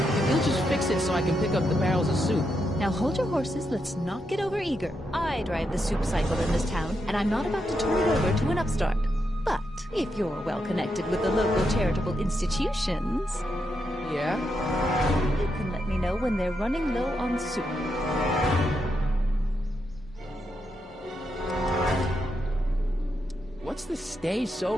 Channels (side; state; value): both; normal; correlation 0.83